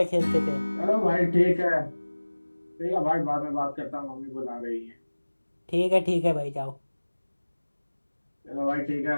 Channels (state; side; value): inverted; both; correlation -1.00